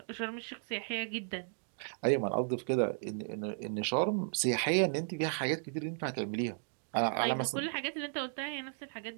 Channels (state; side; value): silent; left; digital silence